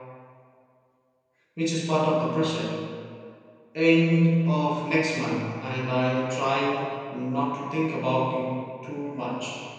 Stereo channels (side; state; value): both; identical; correlation 1.00